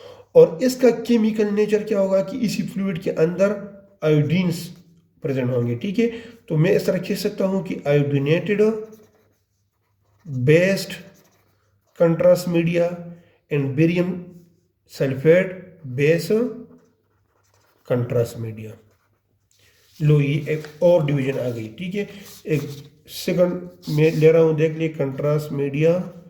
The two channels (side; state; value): both; identical; correlation 1.00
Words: और इसका केमिकल नेचर क्या होगा कि इसी फ्लूइड के अंदर आयोडीन्स प्रेजेंट होंगे, ठीक है। तो मैं इस तरह कह सकता हूं कि iodinated based contrast media and barium sulphate base contrast media. लो, ये एक और डिवीजन आ गई, ठीक है। एक सेकंड में ले रहा हूं, देख लिए, contrast media